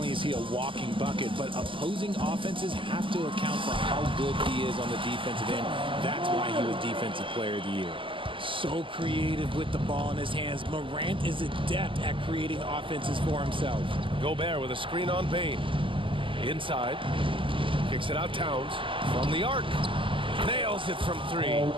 is he a walking bucket, but opposing offenses have to account for how good he is on the defensive end. That's why he was Defensive Player of the Year. So creative with the ball in his hands. Morant is adept at creating offenses for himself. Gobert with a screen on Bain. Inside. Kicks it out Towns from the arc. Nails it from 3.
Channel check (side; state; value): left; late; 0.25 ms